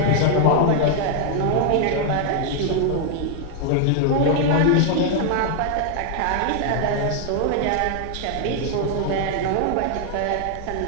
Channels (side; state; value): both; different; correlation 0.00